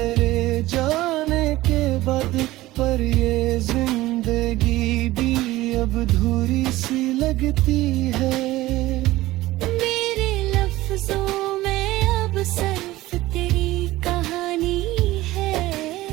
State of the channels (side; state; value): left; quieter; 17.4 dB